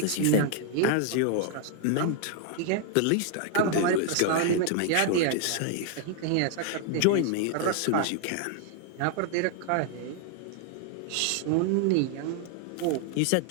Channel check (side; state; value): both; different; correlation 0.00